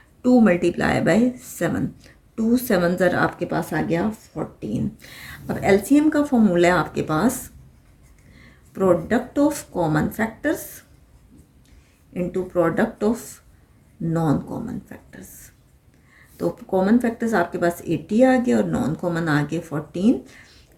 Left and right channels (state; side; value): identical; both; correlation 1.00